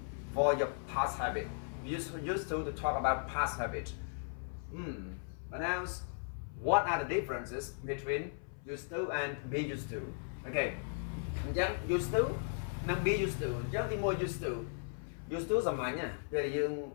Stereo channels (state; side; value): silent; right; 53 dB below the other